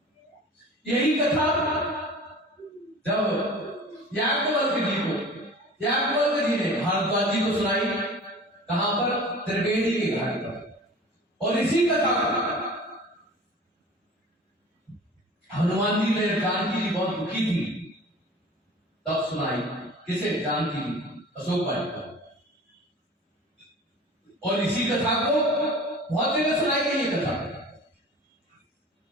यही कथा जब याज्ञवल्क्य जी ने भारद्वाज जी को सुनाई, कहां पर? त्रिवेणी के घाट पर। और इसी कथा को हनुमान जी ने, जानकी जी बहुत दुखी थी, तब सुनाई। किसे? जानकी जी, अशोक वाटिका। और इसी कथा को बहुत जगह सुनाई गई ये कथा।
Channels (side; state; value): both; normal; correlation 0.41